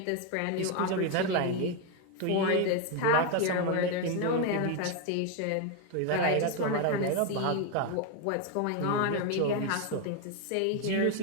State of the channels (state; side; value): different; both; correlation 0.02